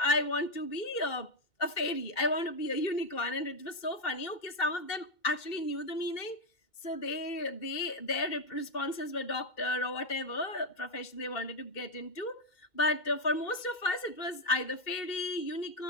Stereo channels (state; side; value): late; right; 2.2 ms